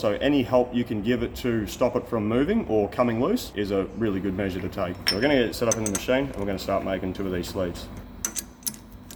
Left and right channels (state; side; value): identical; both; correlation 1.00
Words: any help you can give it to stop it from moving or coming loose is a really good measure to take. So we're going to get it set up in the machine and we're going to start making 2 of these sleeves.